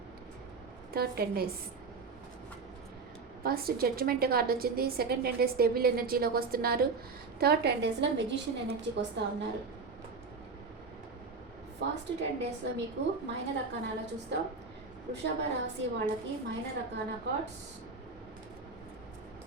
third 10 days. First judgement card వచ్చింది. సెకండ్ 10 days డెవిల్ ఎనర్జీలోకి వస్తున్నారు. థర్డ్ 10 daysలో మెజిషియన్ ఎనర్జీకి వస్తూ ఉన్నారు. ఫస్ట్ 10 daysలో మీకు మైనర్ అర్కానాలో చూస్తాం. వృషభ రాశి వాళ్ళకి మైనర్ అర్కానా కార్డ్స్.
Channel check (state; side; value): quieter; left; 4.5 dB